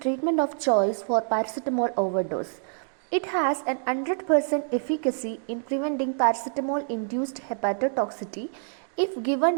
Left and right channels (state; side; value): silent; left; digital silence